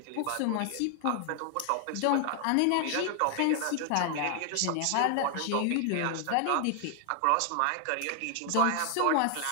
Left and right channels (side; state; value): both; different; correlation 0.00